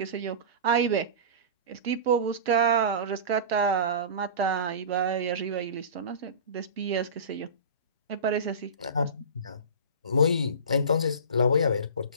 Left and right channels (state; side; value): inverted; both; correlation -0.31